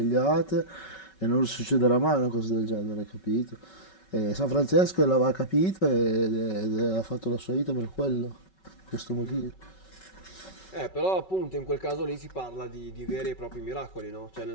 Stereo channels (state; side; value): late; right; 5.3 ms